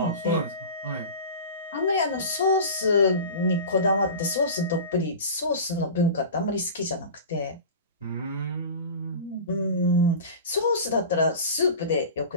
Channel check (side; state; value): both; inverted; correlation -0.33